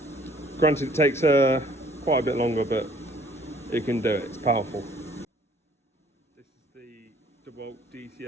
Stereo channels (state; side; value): normal; both; correlation 0.58